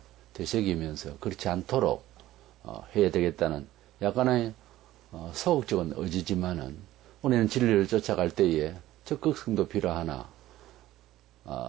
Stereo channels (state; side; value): quieter; left; 15.0 dB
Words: 되새기면서 그렇지 않도록 해야 되겠다는 약간의 소극적인 의지지만은 우리는 진리를 쫓아갈 때에 적극성도 필요하나